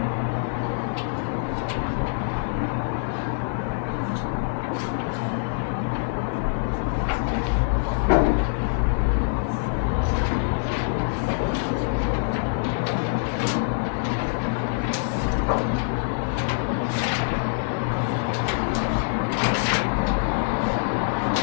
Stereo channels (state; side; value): silent; right; 62 dB below the other